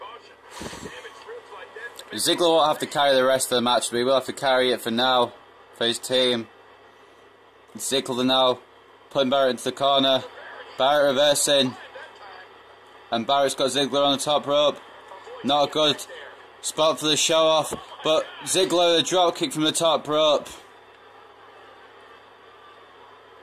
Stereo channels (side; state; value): both; identical; correlation 1.00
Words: Ziggler won't have to carry the rest of the match, but he will have to carry it for now, for his team. Ziggler now putting Barrett into the corner. Barrett reversing. And Barrett's got Ziggler on the top rope. Not a good spot for the show off, but Ziggler a drop kick from the top rope.